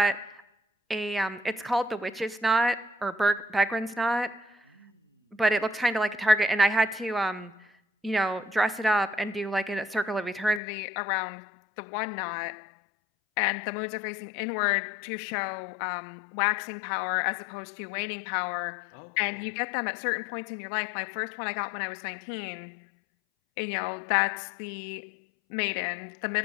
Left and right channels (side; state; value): right; drops out; at 10.6 s